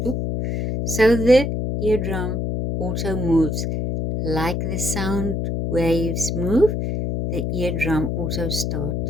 boop. So the eardrum also moves. Like the sound waves move, the eardrum also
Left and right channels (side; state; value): left; noise; hum, 1 dB below the sound